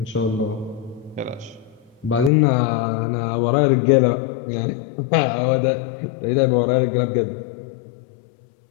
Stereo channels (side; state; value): right; drops out; at 2.3 s